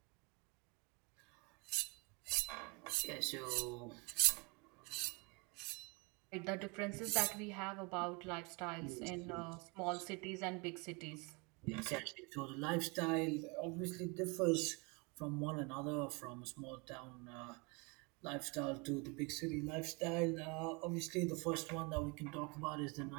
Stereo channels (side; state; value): left; quieter; 29.8 dB